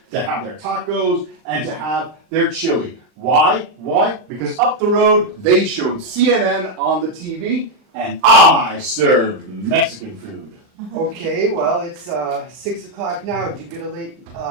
to have their tacos, and to have their chili. Why? Because up the road, they showed CNN on the TV, and I served Mexican food. Okay, well, it's 6 o'clock now. Did you get a late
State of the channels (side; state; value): left; late; 39 ms